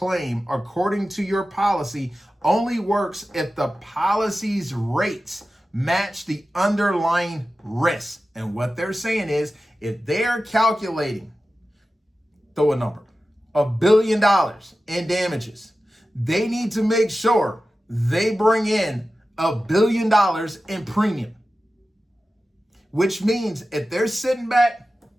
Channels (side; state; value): both; normal; correlation 0.94